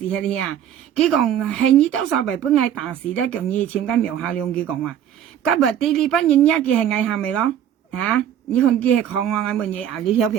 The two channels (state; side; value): quieter; left; 10.0 dB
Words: 喺啲啊？佢講係你多數為本係大事咧，叫你簽緊苗下兩句講話。今日啲呢班人一嘅係藝下咪咯？嚇！你看佢係講我問嘢啊，你條